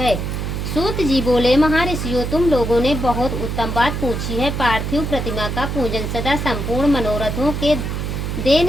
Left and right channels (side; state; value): right; noise; hum, 3 dB below the sound